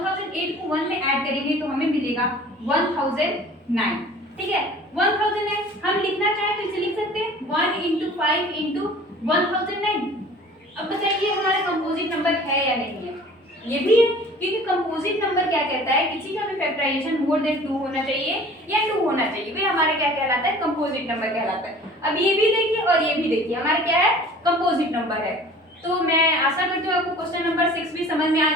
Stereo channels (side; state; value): both; normal; correlation 0.47